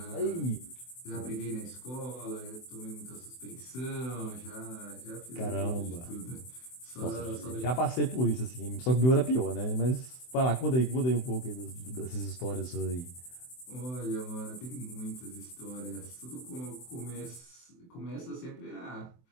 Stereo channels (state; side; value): late; right; 24 ms